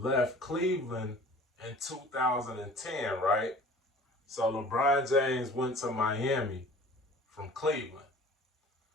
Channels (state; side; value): normal; both; correlation 0.46